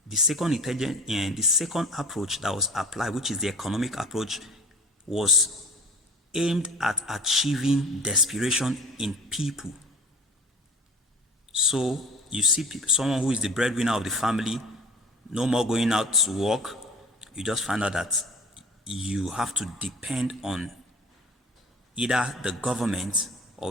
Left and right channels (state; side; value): normal; both; correlation 0.42